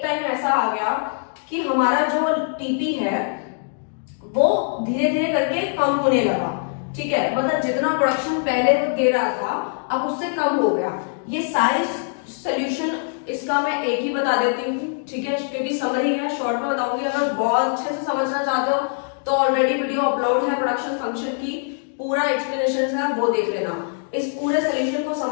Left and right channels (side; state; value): right; silent; digital silence